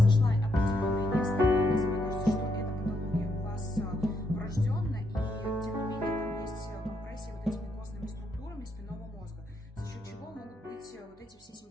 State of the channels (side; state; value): both; normal; correlation 0.77